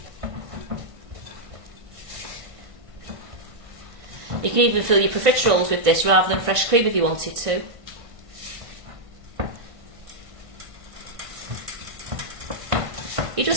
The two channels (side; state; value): left; late; 1.5 ms